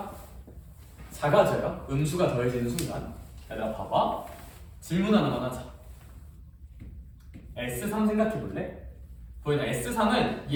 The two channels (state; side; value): identical; both; correlation 1.00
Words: 작아져요. 음수가 더해지는 순간. 얘들아 봐봐. 질문 하나만 하자. S3 생각해 볼래? 보이나 S3은